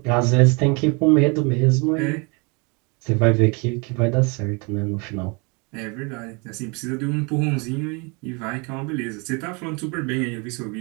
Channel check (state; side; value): quieter; left; 30.9 dB